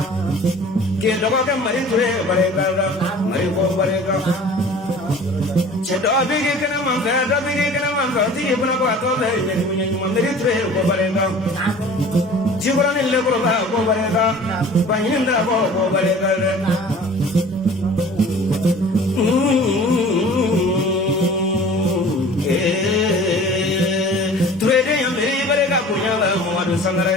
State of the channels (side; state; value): both; normal; correlation 0.45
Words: ke dogo ke mari ture barega mari ko barega che do bigi kana man ka ti ibna ko to le ni munya mari ture ko barega jibra ni le ko barega baninda ko barega ture de yamri barega kunya la mo adu sangare